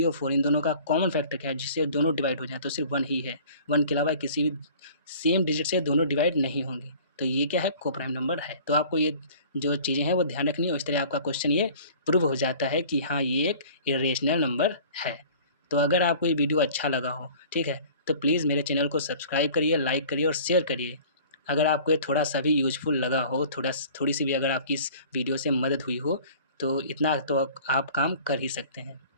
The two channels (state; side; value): inverted; both; correlation -0.47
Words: और 4 इन दोनों का कॉमन फैक्टर क्या है, जिससे दोनों डिवाइड हो जाए, तो सिर्फ 1 ही है। 1 के अलावा किसी भी सेम डिजिट से दोनों डिवाइड नहीं होंगी। तो ये क्या है, को प्राइम नंबर है। तो आपको ये जो चीज़ें हैं वो ध्यान रखनी है। इस तरह आपका क्वेश्चन ये प्रूव हो जाता है कि हाँ ये एक इरेशनल नंबर है। तो अगर आपको ये वीडियो अच्छा लगा हो, ठीक है, तो प्लीज़ मेरे चैनल को सब्सक्राइब करिए, लाइक करिए और शेयर करिए। अगर आपको ये थोड़ा सा भी यूजफुल लगा हो, थोड़ी सी भी अगर आपकी इस वीडियो से मदद हुई हो, तो इतना तो आप काम कर ही सकते हैं।